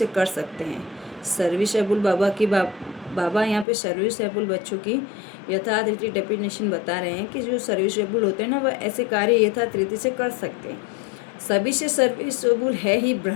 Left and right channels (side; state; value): right; drops out; at 3.7 s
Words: कर सकते हैं। सर्विसेबल बाबा यहाँ पे सर्विसेबल बच्चों की यथार्थ रीति डेफिनेशन बता रहे हैं कि जो सर्विसेबल होते हैं ना, वह ऐसे कार्य यथार्थ रीति से कर सकते हैं। सभी से सर्विसेबल है ही